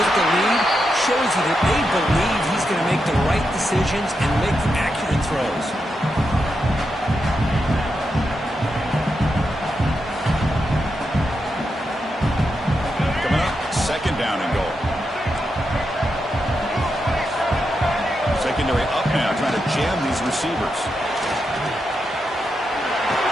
the lead shows you that they believe he's going to make the right decisions and make accurate throws. Coming up, 2nd down and goal. Secondary up now, trying to jam these receivers.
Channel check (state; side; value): normal; both; correlation 0.85